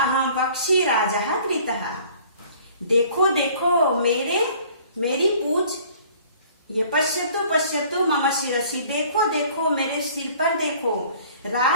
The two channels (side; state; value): both; inverted; correlation -0.52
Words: पक्षी राजः कृतः। देखो देखो मेरी पूछ, ये पश्यतु पश्यतु मम शिरसि, देखो देखो मेरे सिर पर देखो,